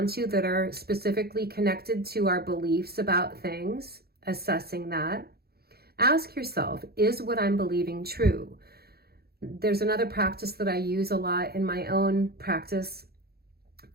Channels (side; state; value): left; late; 0.46 ms